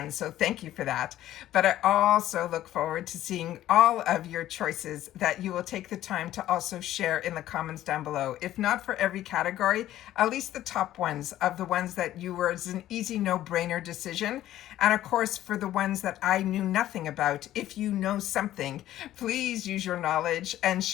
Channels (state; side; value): quieter; right; 13.4 dB